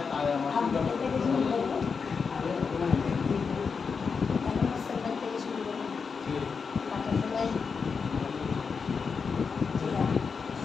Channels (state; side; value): quieter; right; 5.5 dB